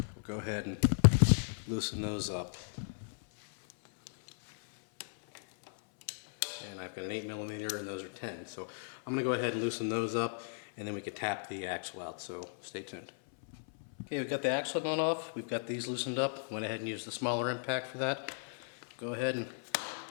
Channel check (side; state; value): right; silent; 54 dB below the other